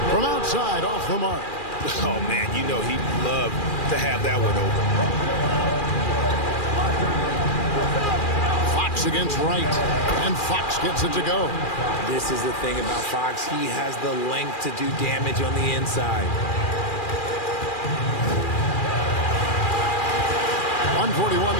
from outside off the mark. Oh, man, you know he'd love to have that one open. Fox against Wright, and Fox gets it to go. This is the thing about Fox. He has the length to do damage on the inside. 1:41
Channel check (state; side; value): late; right; 2.4 ms